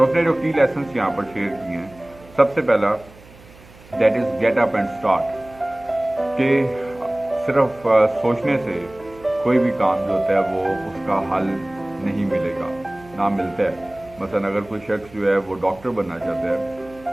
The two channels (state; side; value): noise; right; hum, 23 dB below the sound